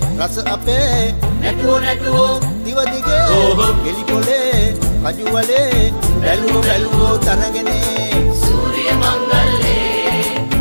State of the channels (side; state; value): both; inverted; correlation -1.00